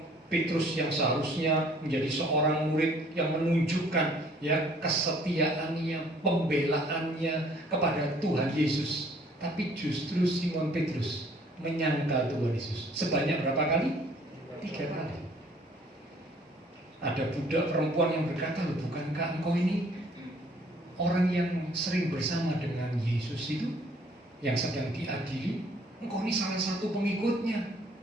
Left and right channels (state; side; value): normal; both; correlation 0.58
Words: Petrus yang seharusnya menjadi seorang murid yang menunjukkan, ya, kesetiaannya, pembelaannya kepada Tuhan Yesus. Tapi justru Simon Petrus menyangkal Tuhan Yesus. Sebanyak berapa kali? 3 kali. Ada budak perempuan yang berkata, bukankah engkau ini orang yang sering bersama dengan Yesus itu, yang sedang diadili? Engkau ini salah satu pengikutnya.